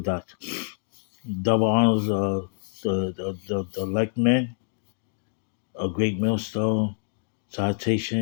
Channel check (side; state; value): right; silent; digital silence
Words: Double honors the elect men, a great millstone,